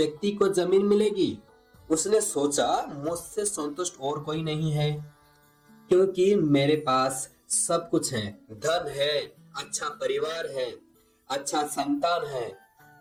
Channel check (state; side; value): identical; both; correlation 1.00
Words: को जमीन मिलेगी। उसने सोचा मुझसे संतुष्ट और कोई नहीं है, क्योंकि मेरे पास सब कुछ है, धन है, अच्छा परिवार है, अच्छा संतान है